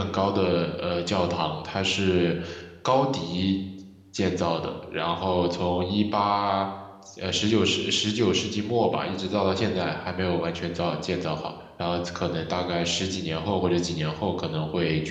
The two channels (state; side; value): identical; both; correlation 1.00